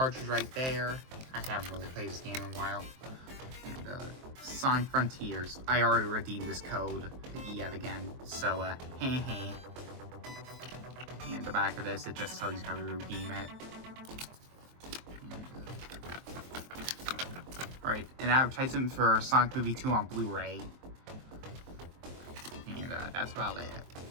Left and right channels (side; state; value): left; late; 23 ms